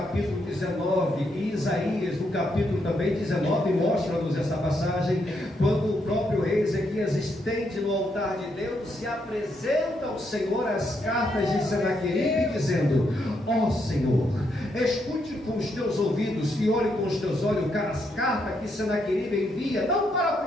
19, e Isaías, no capítulo também 19, mostra-nos essa passagem, quando o próprio rei Ezequias estende no altar de Deus e apresenta ao Senhor as cartas de Senaqueribe, dizendo: ó Senhor, escute com os teus ouvidos e olhe com os teus olhos as cartas que Senaqueribe envia, não para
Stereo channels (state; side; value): normal; both; correlation 0.78